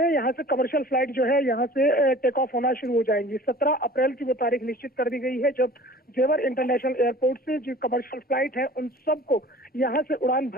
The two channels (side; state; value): both; normal; correlation 0.45